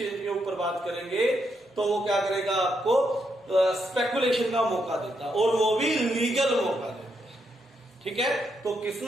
के ऊपर बात करेंगे तो वो क्या करेगा, आपको स्पेकुलेशन का मौका देता, और वो भी लीगल मौका देता। ठीक है, तो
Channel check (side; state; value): both; normal; correlation 0.79